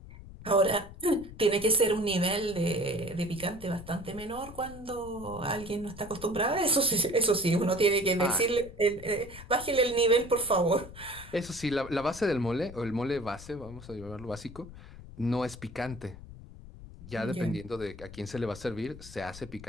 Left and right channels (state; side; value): noise; left; rumble, 16 dB below the sound